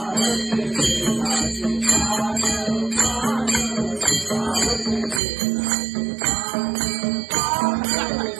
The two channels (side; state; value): left; drops out; at 5.2 s